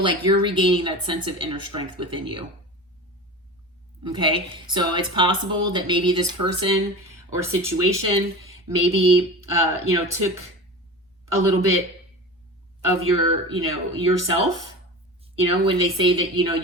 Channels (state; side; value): normal; both; correlation 0.31